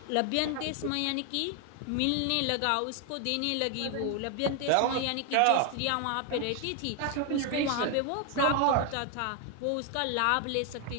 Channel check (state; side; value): different; both; correlation 0.00